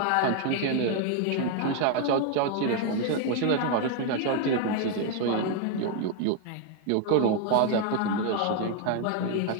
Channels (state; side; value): different; both; correlation 0.01